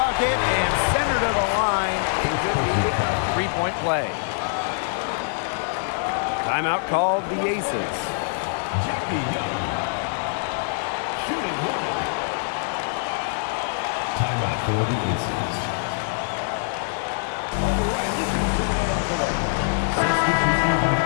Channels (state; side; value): silent; right; 63 dB below the other